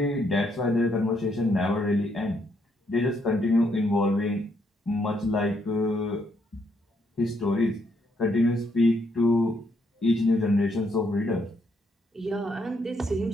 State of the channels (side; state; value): both; normal; correlation 0.74